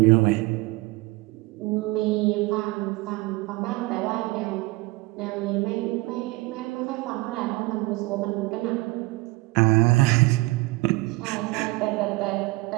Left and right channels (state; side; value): quieter; left; 22.3 dB